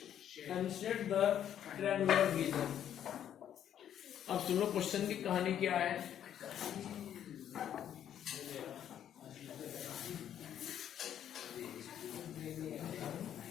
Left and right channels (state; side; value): quieter; right; 10.1 dB